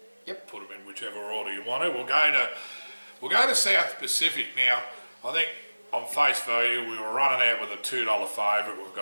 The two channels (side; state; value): both; inverted; correlation -1.00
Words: Yep. Put them in whichever order you want to. We'll go to South Pacific now. I think on face value we were running out with a $2 favourite. We've